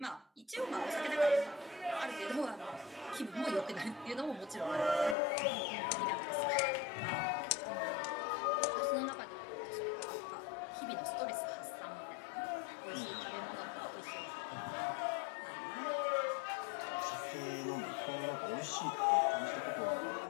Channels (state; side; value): drops out; right; at 5.2 s